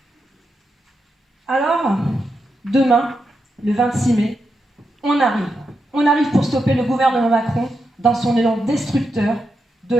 Alors, demain, le 26 mai, on arrive. On arrive pour stopper le gouvernement Macron dans son élan destructeur de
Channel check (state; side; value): normal; both; correlation 0.85